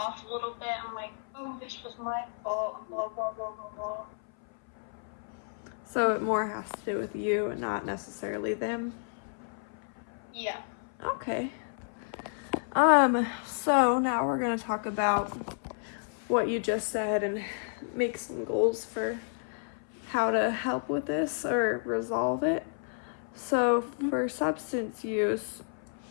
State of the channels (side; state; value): right; silent; 57 dB below the other